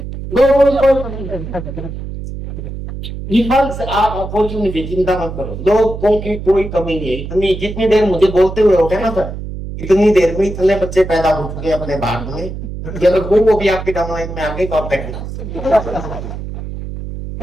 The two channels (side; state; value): right; noise; hum, 8 dB below the sound